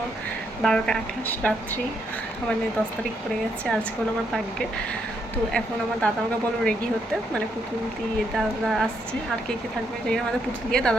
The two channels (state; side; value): normal; both; correlation 0.76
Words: 12টা 28 রাত্রি, মানে 10 তারিখ পড়ে গেছে। আজকে হলো আমার ভাগ্যে। তো এখন আমার দাদা আমাকে বলো রেডি হতে, মানে পুতুল দিয়ে দাদা আসছে, আর কে কে থাকবে জানি না, আমাদের পুতুল দিয়ে